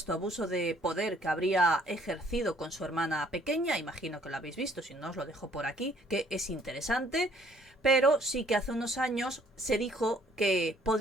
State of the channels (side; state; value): both; normal; correlation 0.61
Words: abuso de poder que habría ejercido con su hermana pequeña, imagino que lo habéis visto, si no os lo dejo por aquí, que es interesante, pero sí que hace unos años se dijo que